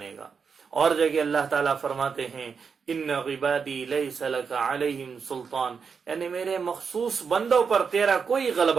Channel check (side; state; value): left; quieter; 5.9 dB